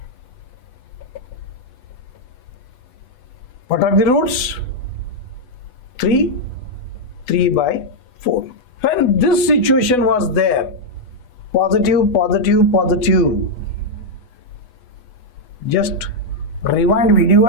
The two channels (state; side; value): late; right; 8.1 ms